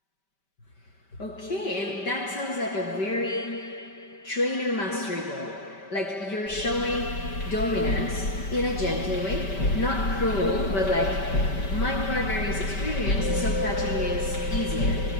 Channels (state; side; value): late; right; 5.1 ms